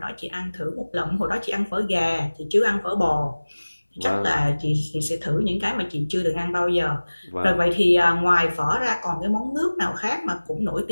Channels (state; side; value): inverted; both; correlation -1.00